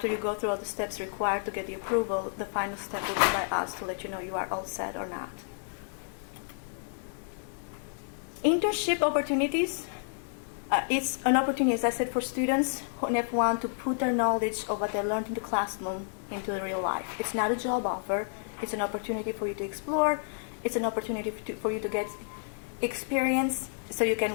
you go through all the steps required to get the approval, the final step will be by us to let you know you are all set or not. Internship opportunities, it's an opportunity, as I said, for students on F1 to put their knowledge of what they learned in the classroom into the real life. It's not a job offer. It's an opportunity for you to explore. It's an opportunity for you to get experience, so you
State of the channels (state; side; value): silent; right; 58 dB below the other